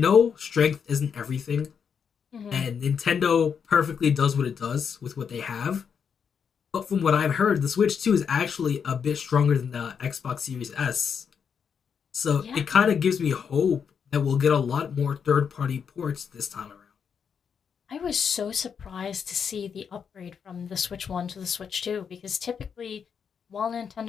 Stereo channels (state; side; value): quieter; right; 6.9 dB